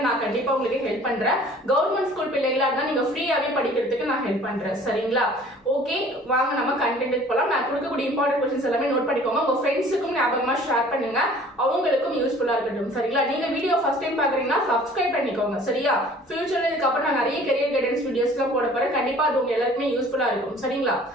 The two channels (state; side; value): normal; both; correlation 0.50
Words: நான் கண்டிப்பா உங்களுக்கு ஹெல்ப் பண்றேன். கவர்மெண்ட் ஸ்கூல் பிள்ளைகளா இருந்தா நீங்க ஃப்ரீயாவே படிக்கிறதுக்கு நான் ஹெல்ப் பண்றேன். சரிங்களா? ஓகே, வாங்க நம்ம கண்டென்ட் போலாம். நான் கொடுக்கக்கூடிய இம்பார்ட்டன்ட் क्वेश्चंस எல்லாமே நோட் பண்ணிக்கோங்க. உங்க ஃப்ரெண்ட்ஸுக்கும் ஞாபகமா ஷேர் பண்ணுங்க, அவங்களுக்கும் யூஸ்ஃபுல்லா இருக்கட்டும். சரிங்களா? நீங்க வீடியோ ஃபர்ஸ்ட் டைம் பாக்குறீங்கன்னா சப்ஸ்கிரைப் பண்ணிக்கோங்க. சரியா? ஃபியூச்சர்ல இதுக்கு அப்புறம் நான் நிறைய கரியர் கைடன்ஸ் வீடியோஸ்லாம் போட போறேன். கண்டிப்பா அது உங்க எல்லாருக்குமே யூஸ்ஃபுல்லா இருக்கும். சரிங்களா?